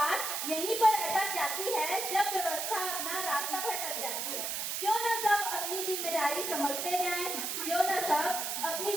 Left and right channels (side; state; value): right; noise; hiss, 2 dB below the sound